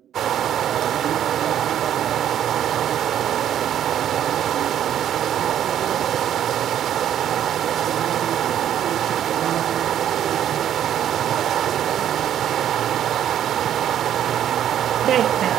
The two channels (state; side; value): quieter; left; 10.5 dB